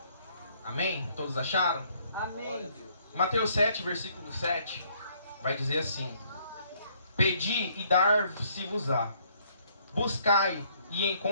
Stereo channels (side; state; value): both; inverted; correlation -0.65